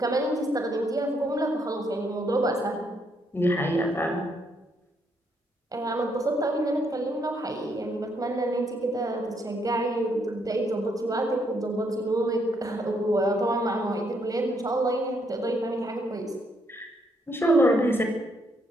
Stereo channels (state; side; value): normal; both; correlation 0.73